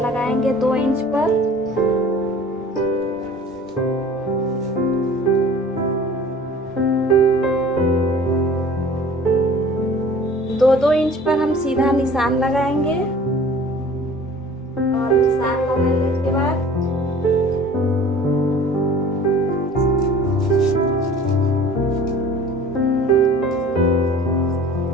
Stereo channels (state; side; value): normal; both; correlation 0.46